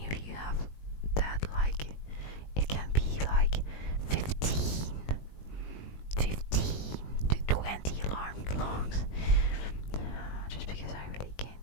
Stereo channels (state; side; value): late; right; 20 ms